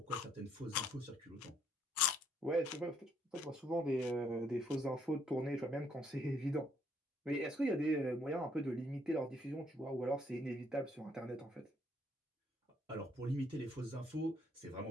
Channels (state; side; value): normal; both; correlation 0.69